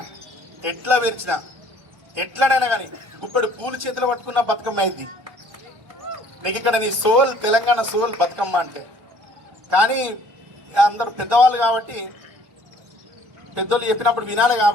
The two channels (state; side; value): late; left; 1.2 ms